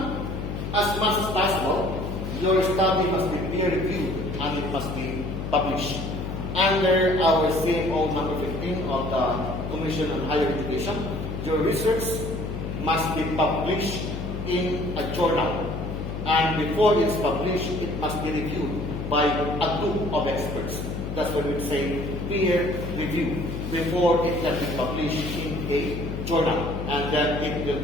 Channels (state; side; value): noise; left; hum, 5 dB below the sound